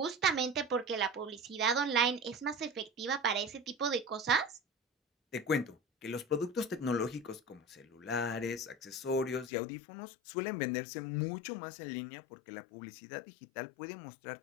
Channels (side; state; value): right; drops out; at 9.5 s